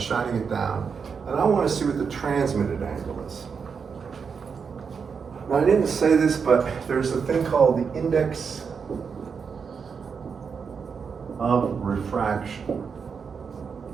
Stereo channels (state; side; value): quieter; left; 6.0 dB